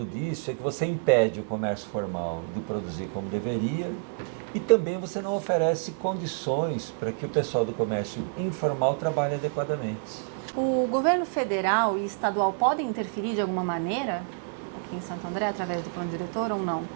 disso é que você impede o comércio formal de produzir como deveria e também você não oferece condições para que o pessoal do comércio informal trabalhe adequadamente. O governo federal e estadual podem interferir de alguma maneira aqui em Santo André, através do plano diretor ou não?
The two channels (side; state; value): left; silent; digital silence